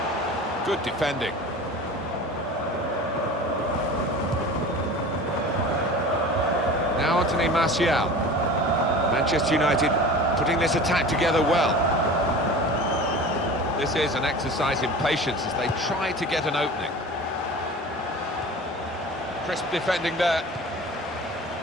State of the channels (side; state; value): both; normal; correlation 0.37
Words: Good defending. Now Anthony Martial. Manchester United putting this attack together well. This is an exercise in patience as they try to get an opening. Crisp defending there.